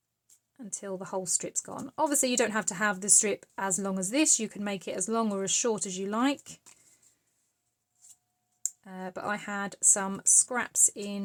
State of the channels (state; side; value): identical; both; correlation 1.00